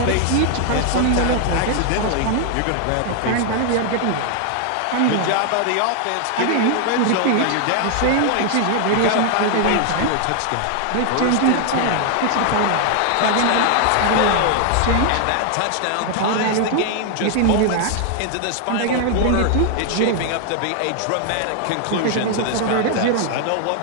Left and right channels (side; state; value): both; different; correlation 0.00